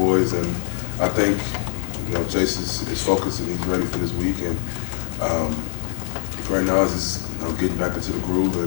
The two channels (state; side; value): silent; right; digital silence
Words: and I think Chase is focused and he's ready for this week, and right now is just getting back into the groove, and